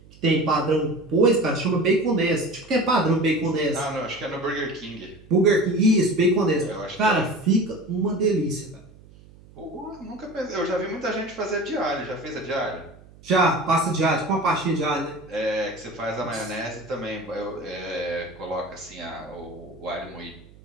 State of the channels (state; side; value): noise; right; hum, 23 dB below the sound